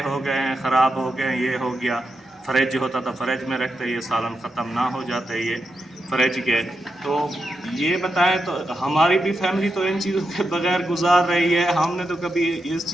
ہو گئے ہیں، خراب ہو گئے ہیں، یہ ہو گیا، فریج ہوتا تھا فریج میں رکھتے، یہ سالن ختم نہ ہو جاتے یہ فریج کے۔ تو یہ بتائیں تو ہماری بھی فیملی تو ان چیزوں کے بغیر گزار رہی ہے، ہم نے تو کبھی اس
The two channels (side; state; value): both; normal; correlation 0.86